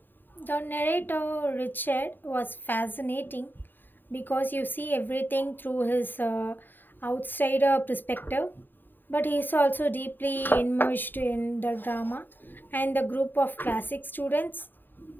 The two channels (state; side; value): late; right; 0.092 ms